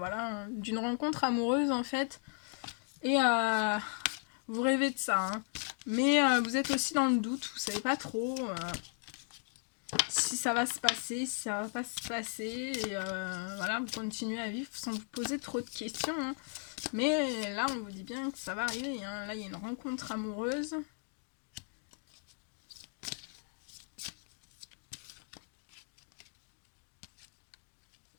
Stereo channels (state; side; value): silent; right; 54 dB below the other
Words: d'une rencontre amoureuse, en fait. Et vous rêvez de ça. Hein. Mais vous êtes aussi dans le doute, vous savez pas trop si ça va se passer, si ça va pas se passer. Et voilà, vous continuez à vivre sans vous poser trop de questions. Hein. Mais là, on vous dit bien que ça va arriver. Hein. Là, il y a une rencontre amoureuse.